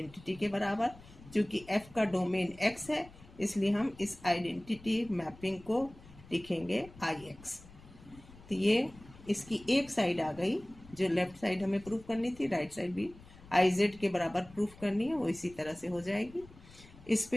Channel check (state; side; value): noise; left; rumble, 21 dB below the sound